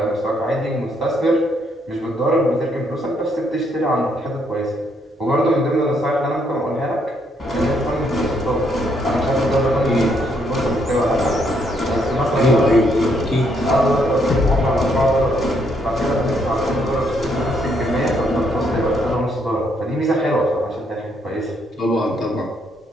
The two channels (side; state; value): both; normal; correlation 0.73